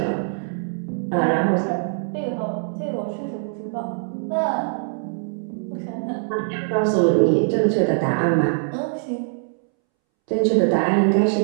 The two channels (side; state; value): left; silent; 64 dB below the other